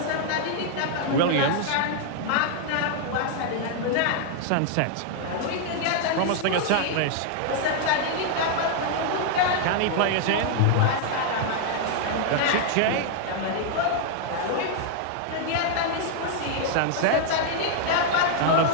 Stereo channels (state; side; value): different; both; correlation -0.01